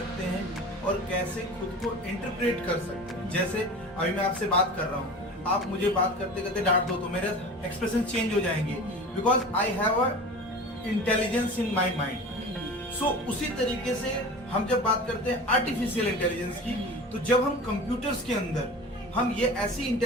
हैं और कैसे खुद को इंटरप्रेट कर सकते हैं। जैसे अभी मैं आपसे बात कर रहा हूँ, आप मुझे बात करते करते डांट दो तो मेरे एक्सप्रेशन चेंज हो जाएंगे, because I have a intelligence in my mind. So उसी तरीके से हम जब बात करते हैं आर्टिफिशियल इंटेलिजेंस की, तो जब हम कंप्यूटर्स के अंदर हम ये ऐसी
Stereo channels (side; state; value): both; normal; correlation 0.35